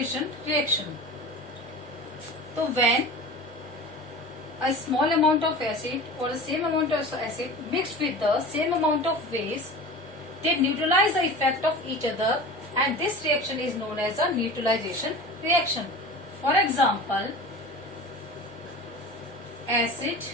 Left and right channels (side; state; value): both; normal; correlation 0.35